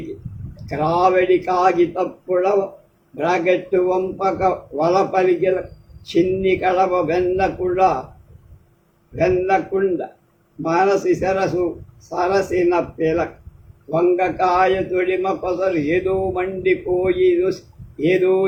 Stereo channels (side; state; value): both; identical; correlation 1.00